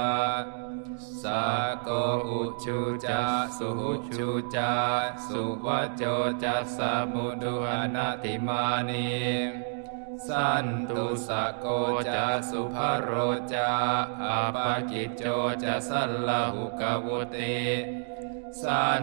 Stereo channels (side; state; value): left; silent; digital silence